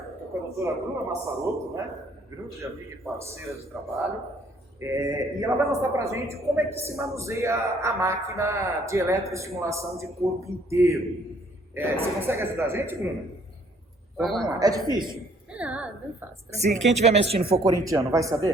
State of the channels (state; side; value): normal; both; correlation 0.62